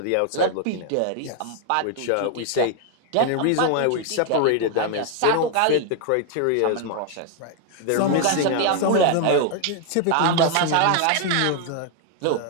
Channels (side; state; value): both; different; correlation 0.00